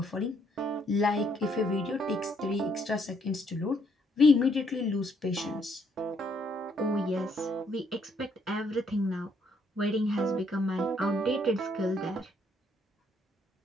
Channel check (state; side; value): normal; both; correlation 0.70